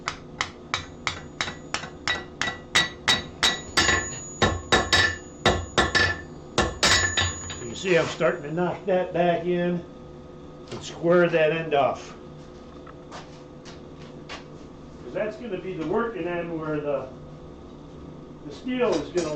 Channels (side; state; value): both; identical; correlation 1.00